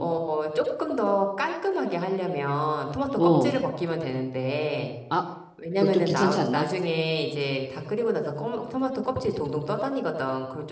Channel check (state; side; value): identical; both; correlation 1.00